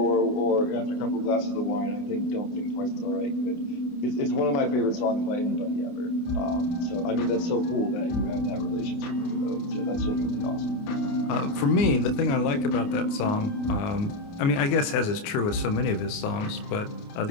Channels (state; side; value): late; right; 29 ms